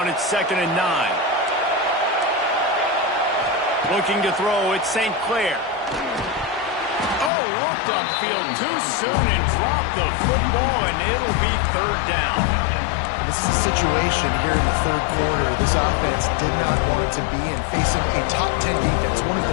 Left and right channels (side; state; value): right; drops out; at 7.3 s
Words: It's 2nd and 9. Looking to throw, it's St. Clair. Oh, looked upfield too soon and dropped the football, and it'll be 3rd down. This is a situation here in the 3rd quarter this offense did not want to be in, facing a top 10 defense, one of